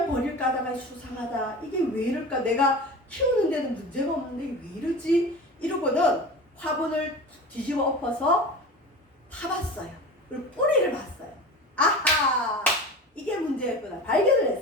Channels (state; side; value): normal; both; correlation 0.33